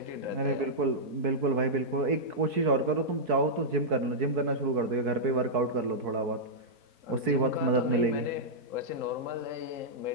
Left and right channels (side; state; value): left; late; 4.6 ms